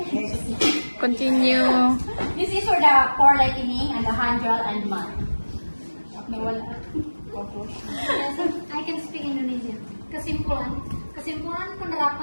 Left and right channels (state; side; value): inverted; both; correlation -1.00